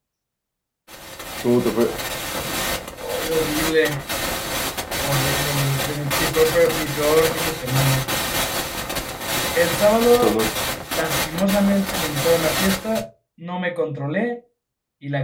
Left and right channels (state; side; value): identical; both; correlation 1.00